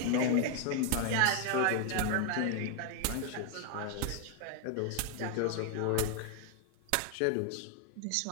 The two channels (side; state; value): both; different; correlation 0.00